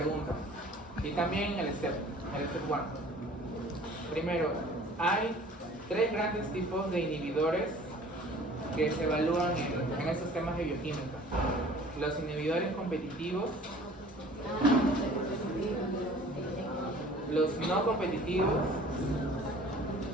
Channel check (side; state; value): both; normal; correlation 0.49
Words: Y también el step 1. Primero, hay 3 grandes tipos de inhibidores que se evalúan en estos temas de bioquímica. Los inhibidores competitivos, los no competitivos